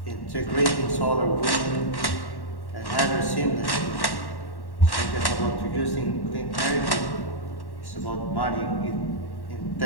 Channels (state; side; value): late; right; 1.1 ms